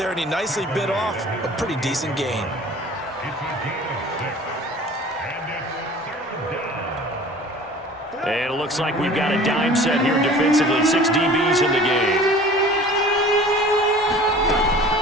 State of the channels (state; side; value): normal; both; correlation 0.45